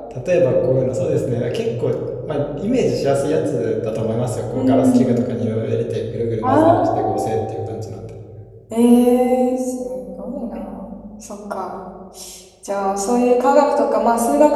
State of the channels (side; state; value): both; identical; correlation 1.00